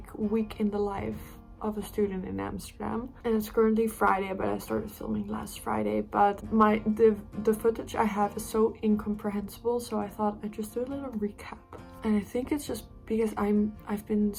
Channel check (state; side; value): identical; both; correlation 1.00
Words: week in the life of a student in Amsterdam. And it's currently Friday, but I started filming last Friday. But the footage I have is so incomprehensible, so I thought I'd just do a little recap. And I think it's just because I've been